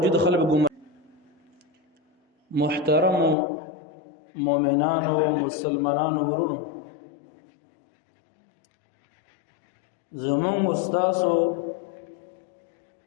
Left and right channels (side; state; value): right; drops out; at 3.4 s